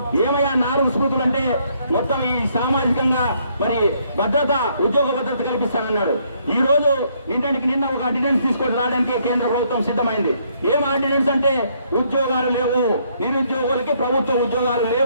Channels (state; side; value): inverted; both; correlation -0.69